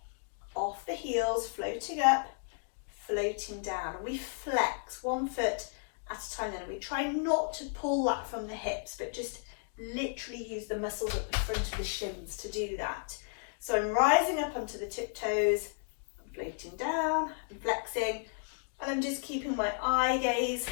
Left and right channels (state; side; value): silent; right; digital silence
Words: off the heels, floating up, floating down. And we flex one foot at a time then. We try not to pull that from the hips, but just literally use the muscles at the front of the shins to do that. So I'm rising up onto the tiptoes, floating down, and flexing, and I'm just keeping my eye gaze